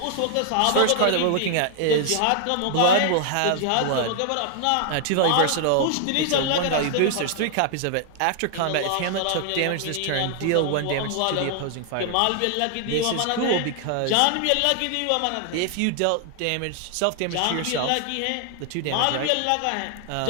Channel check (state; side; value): different; both; correlation 0.00